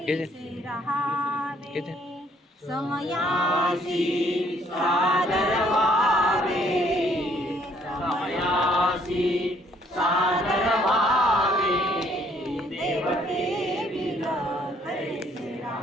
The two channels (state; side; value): normal; both; correlation 0.65